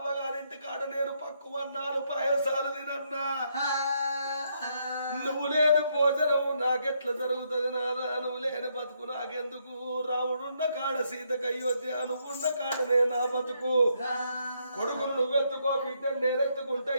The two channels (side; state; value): both; inverted; correlation -0.75